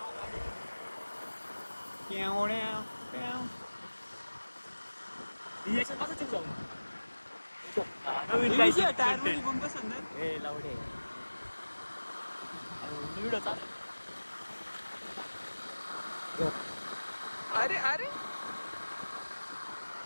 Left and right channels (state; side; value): inverted; both; correlation -1.00